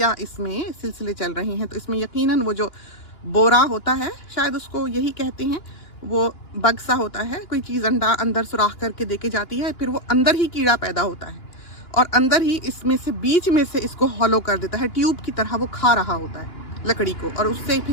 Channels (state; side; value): late; right; 2.9 ms